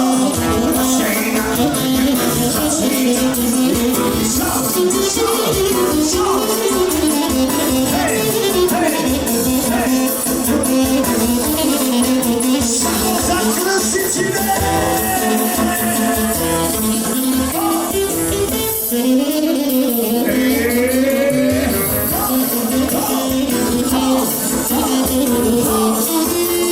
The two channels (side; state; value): left; noise; rumble, 27 dB below the sound